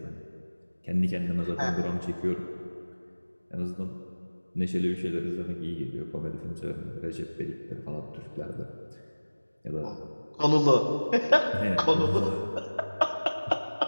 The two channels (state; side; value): inverted; both; correlation -1.00